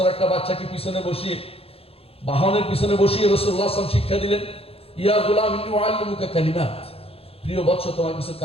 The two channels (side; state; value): right; late; 0.28 ms